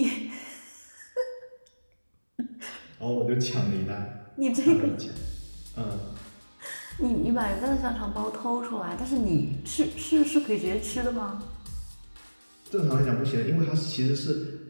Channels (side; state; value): both; inverted; correlation -1.00